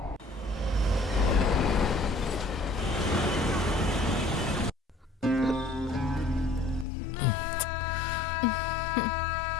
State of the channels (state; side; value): drops out; right; at 6.9 s